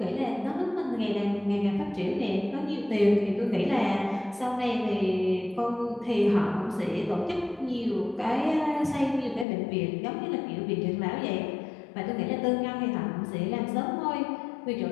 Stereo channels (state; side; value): drops out; right; at 9.5 s